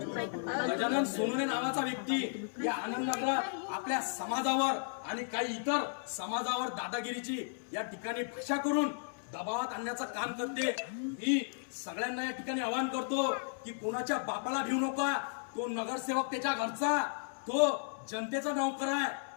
गजानन सोनवणे नावाचा व्यक्ती या आनंदनगरात आपल्या समाजावर आणि काही इतर समाजावर दादागिरीची या ठिकाणी भाषा करून दबावात आणण्याचं काम करते। मी सगळ्यांना या ठिकाणी आवाहन करतो की कोणाच्या बापाला भिवू नका। तो नगरसेवक त्याच्या घरचा, तो जनतेचा नौकर आहे,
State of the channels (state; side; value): silent; right; 55 dB below the other